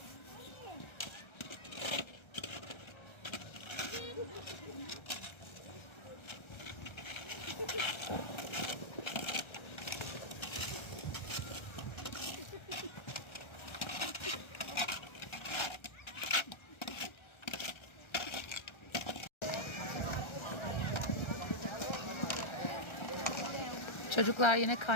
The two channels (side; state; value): right; late; 1.3 ms